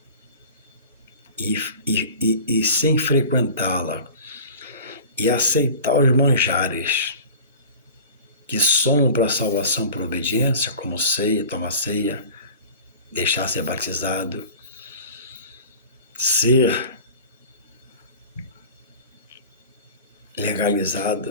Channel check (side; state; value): both; inverted; correlation -0.39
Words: e sem frequentá-la e aceitar os manjares que somam para a salvação por obediência, como ceia, tomar ceia, deixar ser batizado, ser